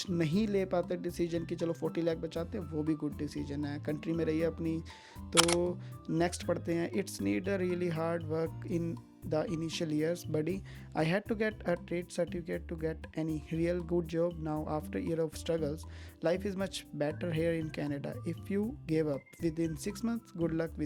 नहीं ले पाते डिसीजन की, चलो 40 लाख बचाते हैं, वो भी गुड डिसीजन है। कंट्री में रहिए अपनी। तो नेक्स्ट पढ़ते हैं, it's need a really hard work in the initial years, buddy. I had to get a trade certificate to get any real good job. Now after year of struggles, life is much better here in Canada. If you gave up within 6 months, good luck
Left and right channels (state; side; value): identical; both; correlation 1.00